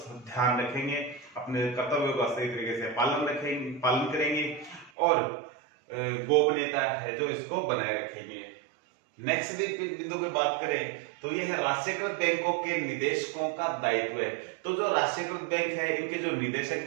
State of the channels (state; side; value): drops out; left; at 4.9 s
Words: ध्यान रखेंगे, अपने कर्तव्यों का सही तरीके से पालन करेंगे और गोपनीयता है जो इसको बनाए रखेंगे। नेक्स्ट बिंदु पे बात करें तो यह है राष्ट्रीयकृत बैंकों के निदेशकों का दायित्व है। तो जो राष्ट्रीयकृत बैंक है इनके जो निदेशक